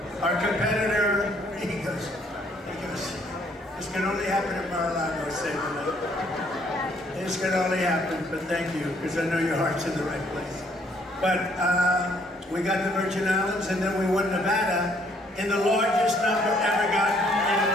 Our competitor, he goes, this can only happen at Mar-a-Lago, say this can only happen, but thank you, because I know your heart's in the right place. But we got the Virgin Islands, and then we won Nevada in the largest number ever gotten in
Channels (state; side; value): normal; both; correlation 0.65